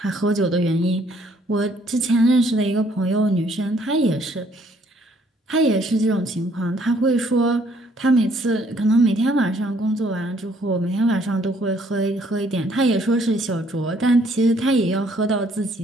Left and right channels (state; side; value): normal; both; correlation 0.64